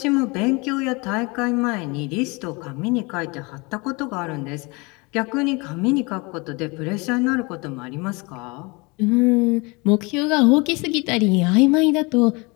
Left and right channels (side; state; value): right; quieter; 27.2 dB